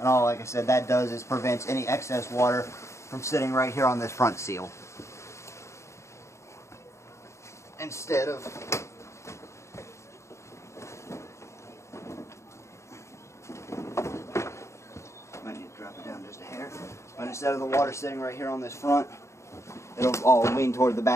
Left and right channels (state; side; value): late; right; 0.14 ms